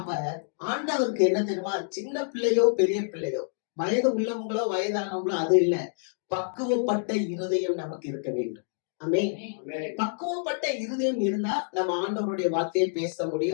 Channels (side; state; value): right; silent; digital silence